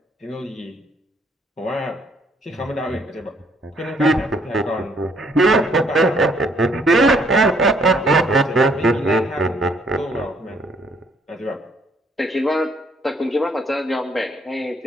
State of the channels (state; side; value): normal; both; correlation 0.66